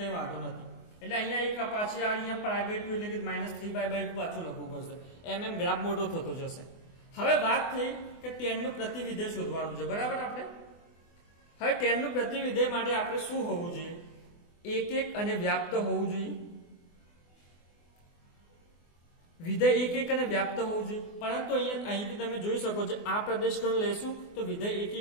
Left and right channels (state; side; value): late; right; 24 ms